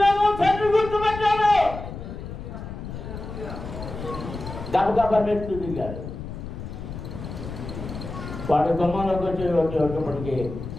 తండ్రి గుర్తుపెట్టాడు. గబగబా మెట్లు దిగాడు. వాడు గుమ్మంలోకి వచ్చేటప్పటికి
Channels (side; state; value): left; noise; rumble, 9 dB below the sound